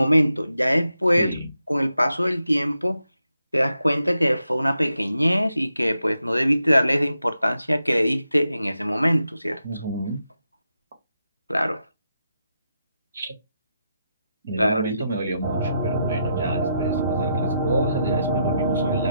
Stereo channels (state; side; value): inverted; both; correlation -0.83